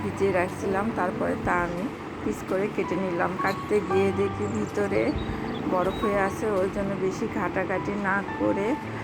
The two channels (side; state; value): both; identical; correlation 1.00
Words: ভিজিয়ে রাখছিলাম, তারপরে তা আমি পিস করে কেটে নিলাম। কাটতে গিয়ে দেখি ভিতরে বরফ হয়ে আছে, ওই জন্য বেশি ঘাটাঘাটি না করে